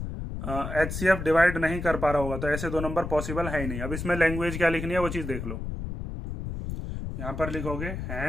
HCF डिवाइड नहीं कर पा रहा होगा तो ऐसे दो नंबर पॉसिबल है ही नहीं। अब इसमें लैंग्वेज क्या लिखनी है वो चीज़ देख लो, यहाँ पर लिखोगे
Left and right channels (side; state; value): left; noise; rumble, 6 dB below the sound